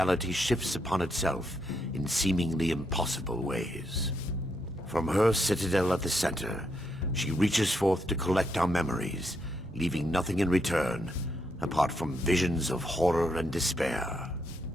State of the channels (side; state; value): both; normal; correlation 0.78